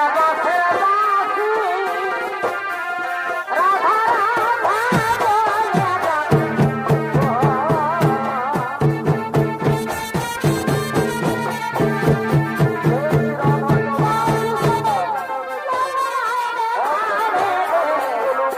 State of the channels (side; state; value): both; identical; correlation 1.00